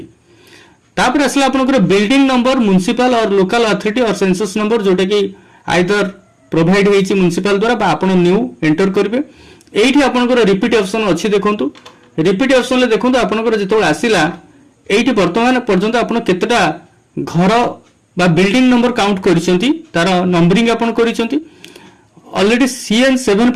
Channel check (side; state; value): both; identical; correlation 1.00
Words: तापर आसला आपनकर बिल्डिंग नंबर म्युनिसिपल और लोकल अथॉरिटी और सेंसस नंबर जोटा कि आइदर प्रोवाइड होईची म्युनिसिपल द्वारा बा आपण न्यू एंटर करबे एठी आपनकर रिपीट ऑप्शन अछि देखंतु रिपीट ऑप्शन ले देखंतु आपनकर जेतो आसिला एठी वर्तमान पर्यंत आपण केतेटा घर बा बिल्डिंग नंबर काउंट करिसंती तार नंबरिंग आपण करिसंती ऑलरेडी CN7